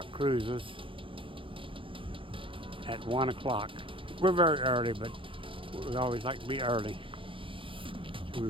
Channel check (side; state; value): left; late; 0.25 ms